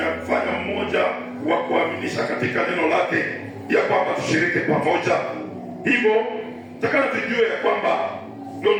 mmoja wa kuaminisha katika neno lake, ya kwamba tushiriki pamoja. Hivyo takana tujue ya kwamba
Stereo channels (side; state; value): both; identical; correlation 1.00